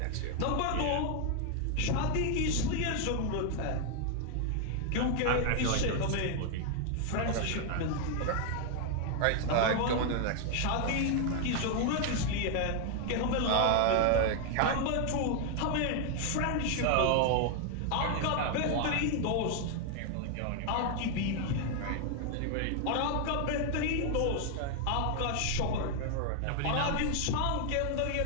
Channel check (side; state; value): both; different; correlation 0.00